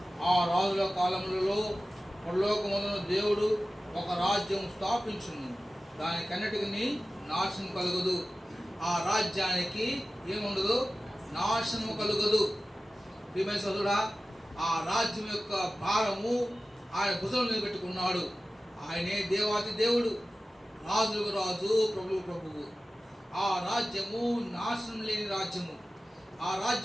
ఆ రాజుల కాలములలో పరలోకమందున దేవుడు ఒక రాజ్యం స్థాపించును, దానికన్నిటికీ నాశనం కలుగదు. ఆ రాజ్యానికి ఏముండదు, నాశనము కలుగదు. ప్రియమైన సోదరుడా, ఆ రాజ్యం యొక్క భారము ఆయన భుజం మీద పెట్టుకున్నాడు. ఆయనే దేవాతి దేవుడు, రాజులకు రాజు, ప్రభువు ప్రభువు. ఆ రాజ్యము నాశనం లేని రాజ్యము. ఆ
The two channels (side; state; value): both; normal; correlation 0.96